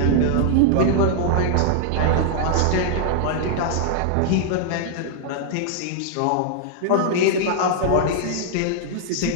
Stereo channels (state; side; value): different; both; correlation -0.01